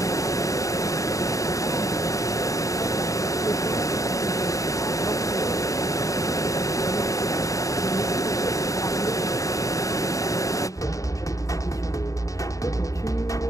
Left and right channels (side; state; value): right; late; 0.16 ms